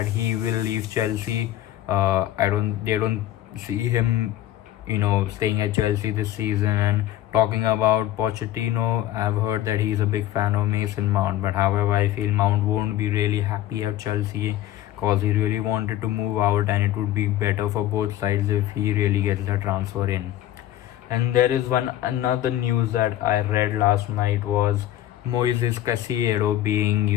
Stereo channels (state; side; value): quieter; right; 13.4 dB